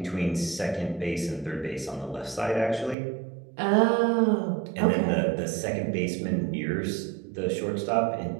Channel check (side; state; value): left; drops out; at 3.0 s